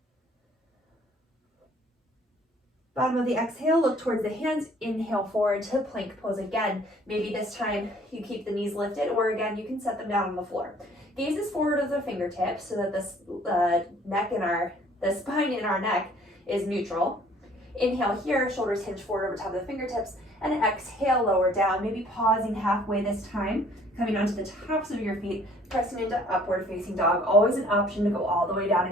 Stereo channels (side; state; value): both; normal; correlation 0.57